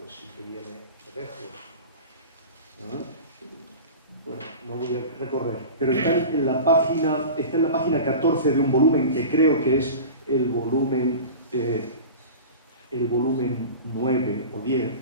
sí que viene de lejos. Bueno, no voy a recorrer, pero está en la página 14 de un volumen que creo que es el volumen 9 o 10,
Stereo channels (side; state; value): both; inverted; correlation -0.34